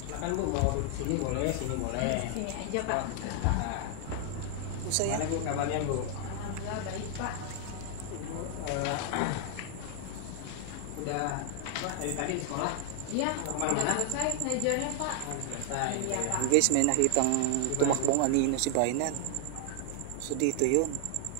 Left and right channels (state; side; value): different; both; correlation 0.00